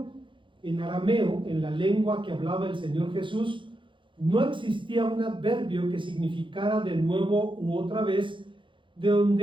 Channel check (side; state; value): left; late; 0.24 ms